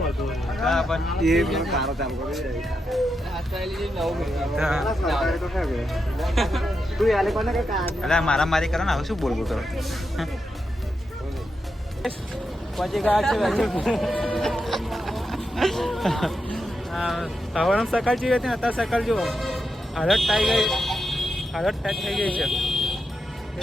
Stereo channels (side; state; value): both; normal; correlation 0.86